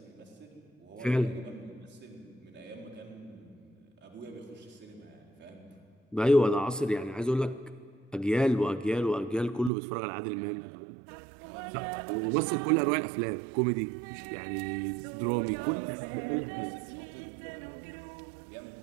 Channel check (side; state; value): left; drops out; at 9.7 s